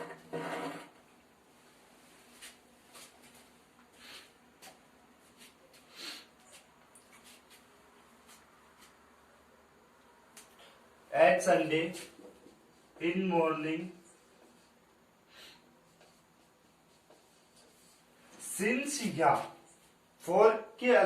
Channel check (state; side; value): identical; both; correlation 1.00